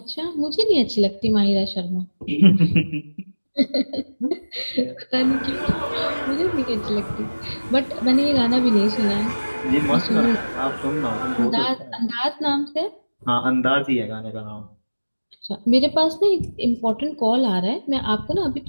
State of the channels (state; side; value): inverted; both; correlation -1.00